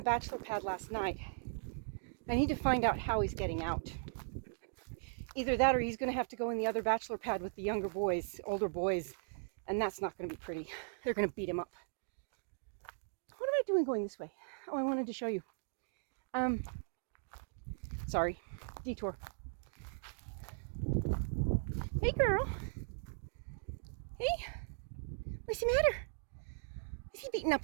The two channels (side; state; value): left; silent; digital silence